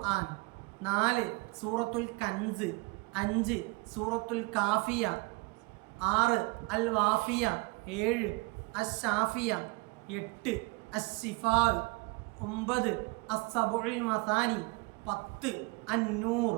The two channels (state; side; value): quieter; left; 26.4 dB